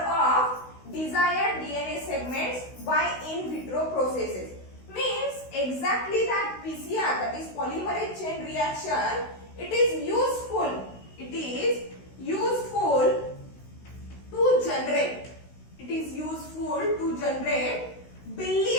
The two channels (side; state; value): right; late; 16 ms